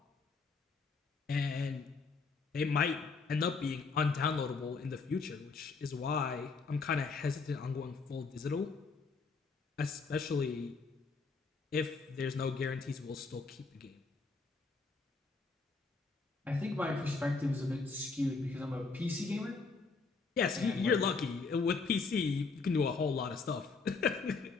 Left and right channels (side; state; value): right; quieter; 4.4 dB